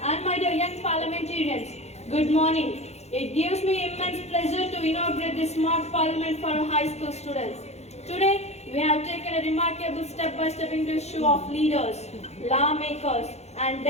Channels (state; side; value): late; right; 0.31 ms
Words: and my dear young parliamentarians. Good morning. It gives me immense pleasure to inaugurate this mock parliament for our high school students. Today, we have taken a remarkable step by stepping into the shoe of leaders, lawmakers, and